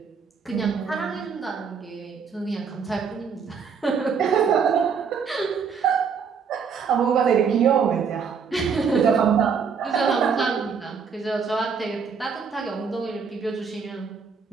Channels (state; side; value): quieter; left; 6.1 dB